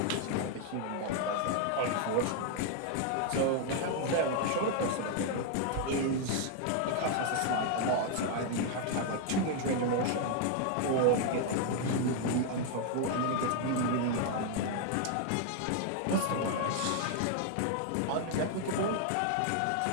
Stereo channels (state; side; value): different; both; correlation 0.00